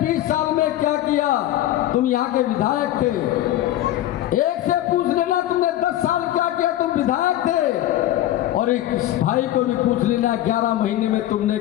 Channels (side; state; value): right; quieter; 13.7 dB